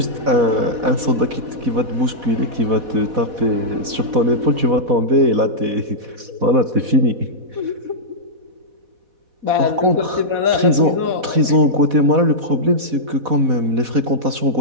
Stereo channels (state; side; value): late; left; 4.1 ms